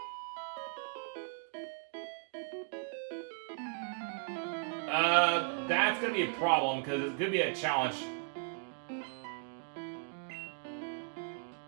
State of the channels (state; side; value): silent; left; 53 dB below the other